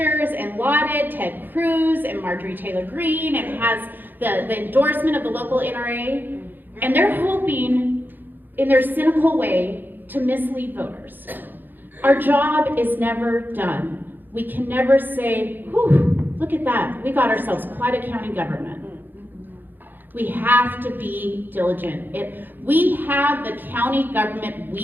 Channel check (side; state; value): left; late; 0.091 ms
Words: and lauded Ted Cruz and Marjorie Taylor Greene and has the endorsement of the local NRA. And they're hoping, in their cynical way, to mislead voters. Our job is never done. We can never say, whew, look at that. We got ourselves quite a county government. We have to be diligent. We have the county government